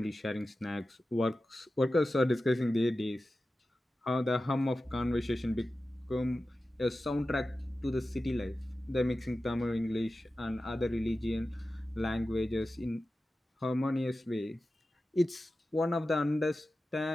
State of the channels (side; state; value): both; normal; correlation 0.94